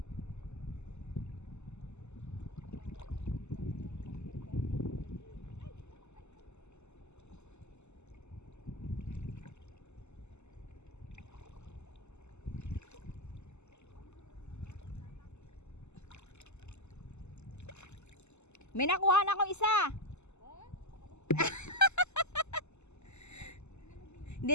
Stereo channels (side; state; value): right; late; 0.82 ms